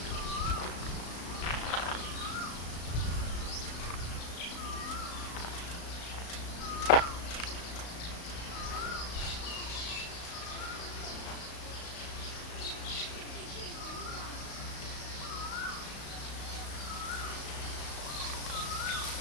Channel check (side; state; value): right; late; 35 ms